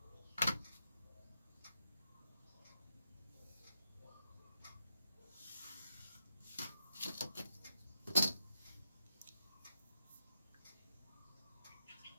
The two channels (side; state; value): both; inverted; correlation -0.85